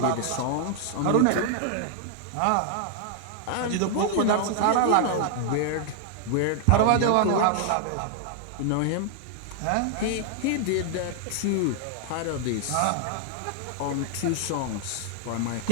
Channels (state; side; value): different; both; correlation -0.01